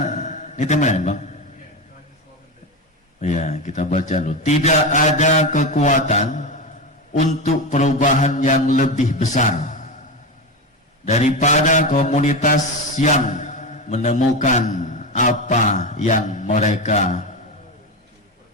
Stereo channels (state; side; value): normal; both; correlation 0.18